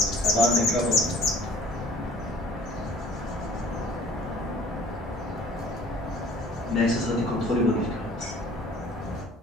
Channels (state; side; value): normal; both; correlation 0.51